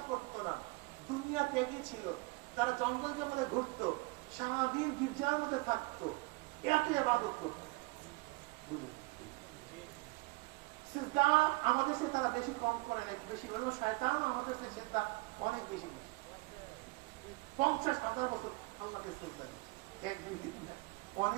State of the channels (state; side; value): quieter; left; 24.7 dB